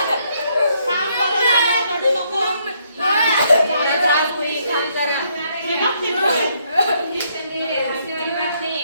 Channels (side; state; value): both; inverted; correlation -0.72